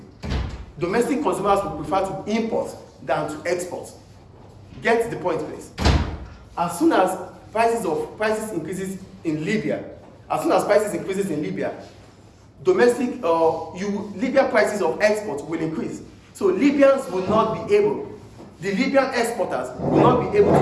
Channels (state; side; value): identical; both; correlation 1.00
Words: domestic consumers will prefer to import than to export. Get the point, please. As soon as prices increases in Libya, Libya prices of export will increase. So Libyans will not be able, the Libyan exporters will not be able